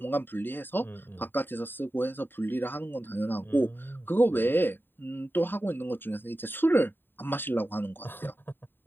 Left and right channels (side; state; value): right; late; 0.096 ms